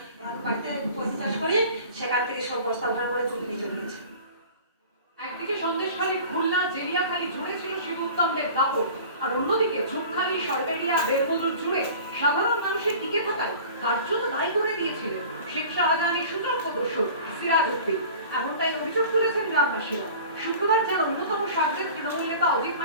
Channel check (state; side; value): inverted; both; correlation -0.42